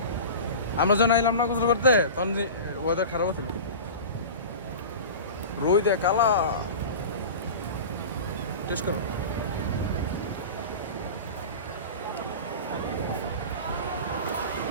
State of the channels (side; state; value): both; inverted; correlation -0.32